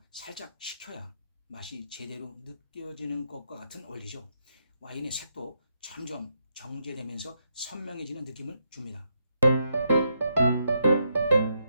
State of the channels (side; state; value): both; inverted; correlation -0.80